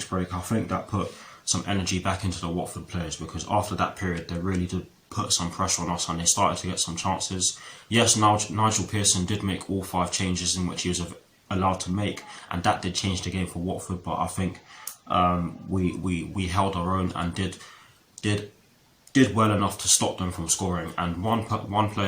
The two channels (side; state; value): both; identical; correlation 1.00